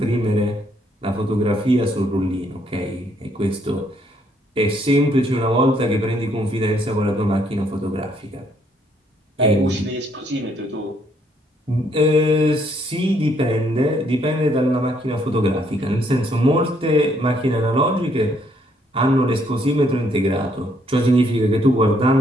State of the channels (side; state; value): both; normal; correlation 0.70